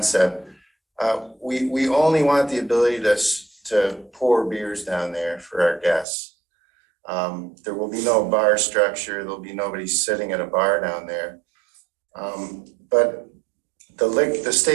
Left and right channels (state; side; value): drops out; left; at 6.1 s